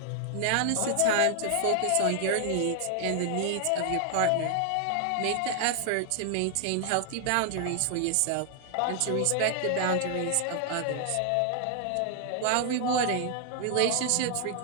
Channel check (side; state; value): both; different; correlation 0.00